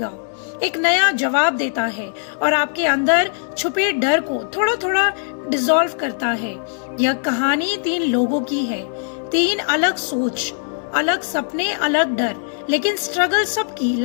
एक नया जवाब देता है और आपके अंदर छुपे डर को थोड़ा थोड़ा डिसॉल्व करता है। यह कहानी 3 लोगों की है, 3 अलग सोच, अलग सपने, अलग डर, लेकिन स्ट्रगल सबकी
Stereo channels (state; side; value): silent; right; digital silence